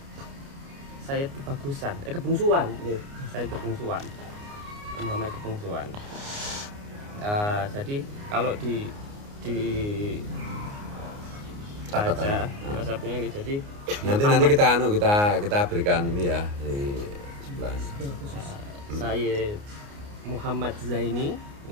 Sayyid Kebungsuan, Sayyid Kebungsuan, Muhammad Kebungsuan. Jadi kalau di baca nasabnya gitu, jadi nanti kita berikan ini ya di sebelah. Sayyid Muhammad Zaini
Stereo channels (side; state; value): left; late; 29 ms